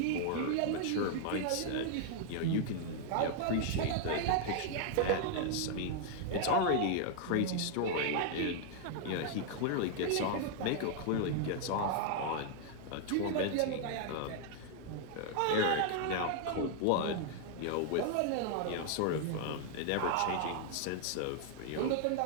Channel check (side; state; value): both; different; correlation 0.00